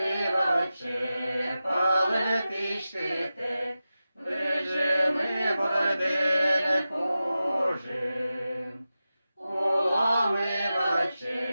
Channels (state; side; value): inverted; both; correlation -0.93